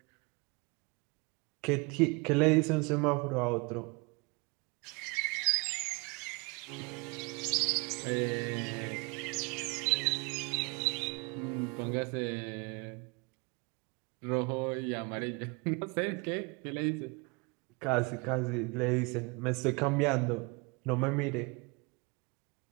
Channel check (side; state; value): left; quieter; 29.1 dB